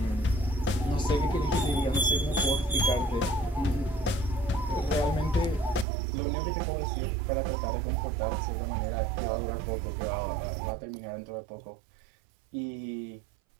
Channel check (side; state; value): left; drops out; at 5.9 s